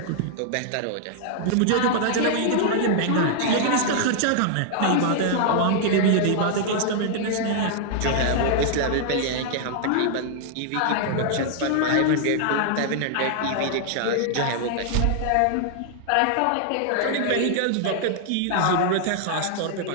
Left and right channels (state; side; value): different; both; correlation -0.01